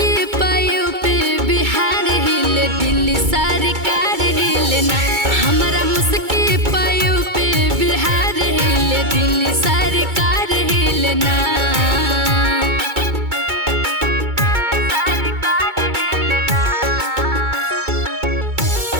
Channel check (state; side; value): late; left; 2.3 ms